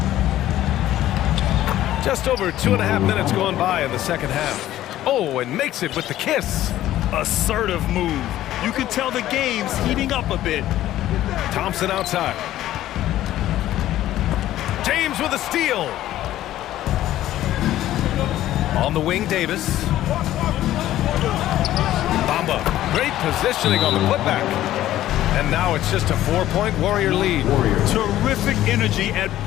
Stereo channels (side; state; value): right; quieter; 13.7 dB